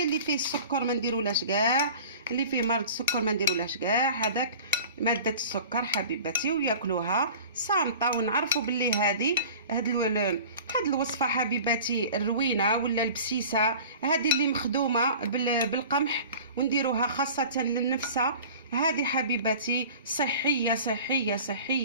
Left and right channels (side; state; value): both; inverted; correlation -0.41